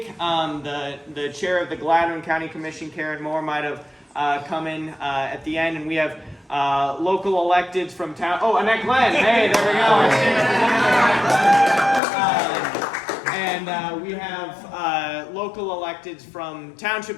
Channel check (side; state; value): right; drops out; at 12.0 s